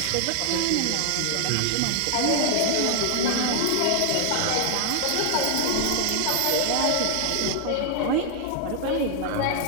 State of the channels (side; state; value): both; different; correlation 0.00